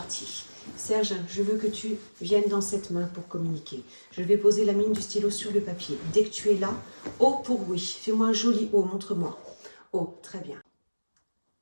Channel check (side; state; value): both; inverted; correlation -1.00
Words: Serge, je veux que tu viennes dans cette main pour communiquer. Je vais poser la mine du stylo sur le papier. Dès que tu es là, O pour oui. Fais-moi un joli O, montre-moi. O, très bien.